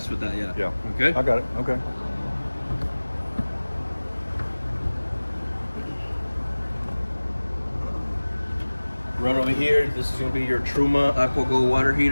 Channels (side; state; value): both; inverted; correlation -1.00